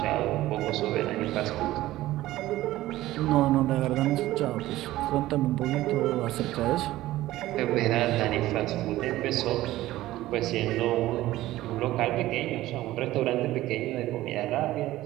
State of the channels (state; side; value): quieter; left; 16.0 dB